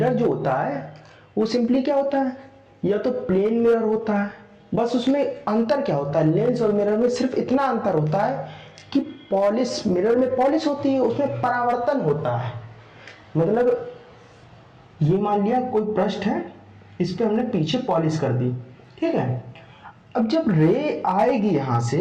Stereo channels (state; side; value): identical; both; correlation 1.00